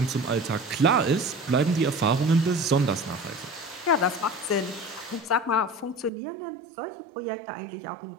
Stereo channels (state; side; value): drops out; left; at 6.1 s